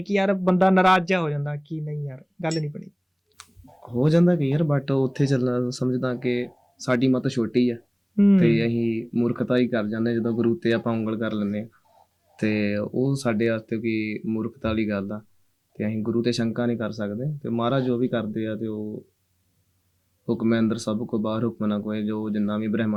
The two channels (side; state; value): both; identical; correlation 1.00